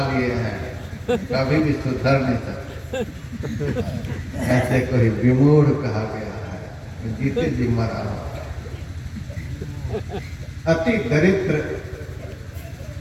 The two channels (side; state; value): both; identical; correlation 1.00